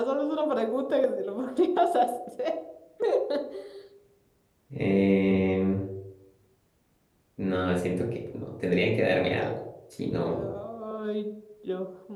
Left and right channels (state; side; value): identical; both; correlation 1.00